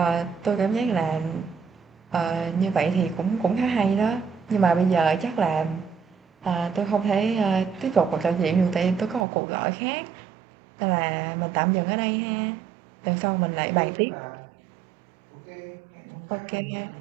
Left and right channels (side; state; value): left; drops out; at 9.2 s